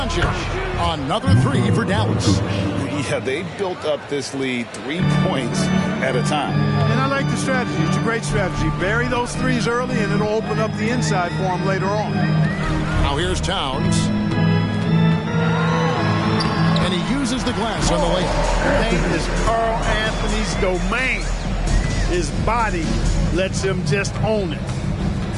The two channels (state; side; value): identical; both; correlation 1.00